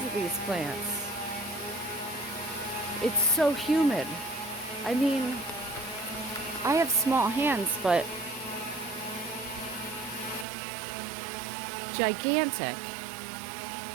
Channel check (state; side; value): drops out; left; at 10.5 s